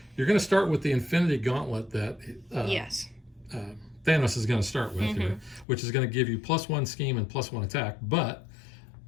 you're going to start with the Infinity Gauntlet that Thanos is going to start with here, which is going to give you +1 scheme and +1 attack, but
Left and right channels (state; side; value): drops out; right; at 5.7 s